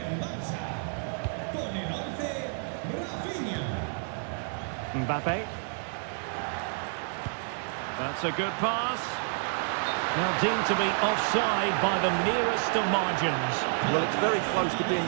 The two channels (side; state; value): left; silent; 58 dB below the other